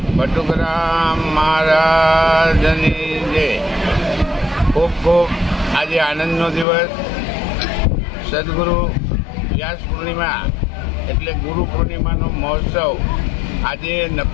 બટુગ્રામ મહારાજની જય. ખૂબ ખૂબ આજે આનંદનો દિવસ. સદગુરુ વ્યાસ પૂર્ણિમા એટલે ગુરુ પૂર્ણિમાનો મહોત્સવ આજે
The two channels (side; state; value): right; drops out; at 6.7 s